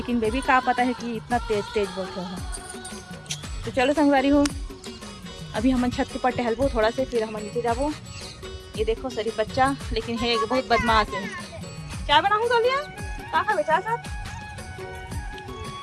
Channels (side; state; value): both; identical; correlation 1.00